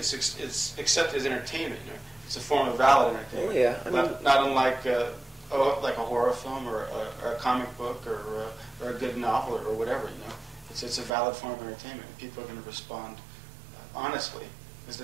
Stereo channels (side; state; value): left; drops out; at 11.1 s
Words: accepted as entertainment. It's a form of valid entertainment. Oh, yeah, not unlike like a horror film or a comic book or a good novel or whatever. It's a valid form of entertainment, and people are going to respond honestly because